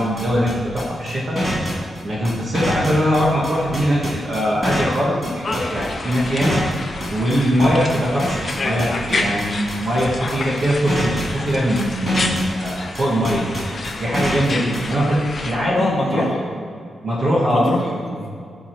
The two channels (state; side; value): normal; both; correlation 0.86